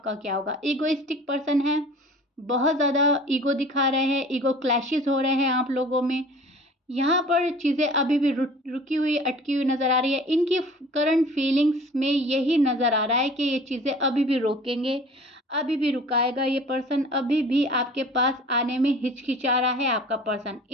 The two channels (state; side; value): normal; both; correlation 0.45